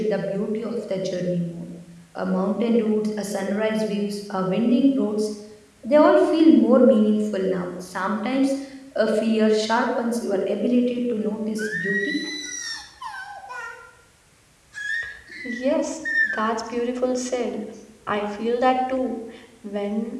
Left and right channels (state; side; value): identical; both; correlation 1.00